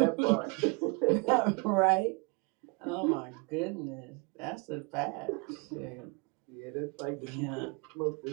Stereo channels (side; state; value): left; quieter; 31.0 dB